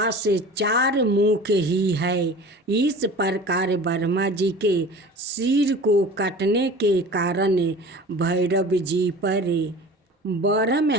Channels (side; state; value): both; normal; correlation 0.39